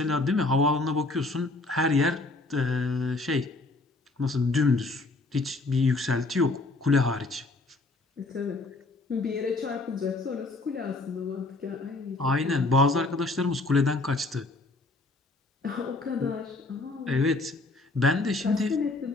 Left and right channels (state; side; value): quieter; right; 3.2 dB